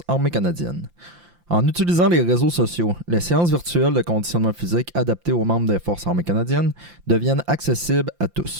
armées canadiennes. En utilisant les réseaux sociaux, les séances virtuelles de conditionnement physique adaptées aux membres des Forces armées canadiennes deviennent accessibles à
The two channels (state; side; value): late; left; 5.8 ms